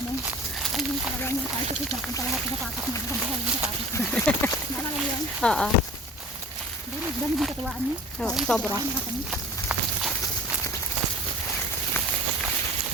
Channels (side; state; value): both; normal; correlation 0.42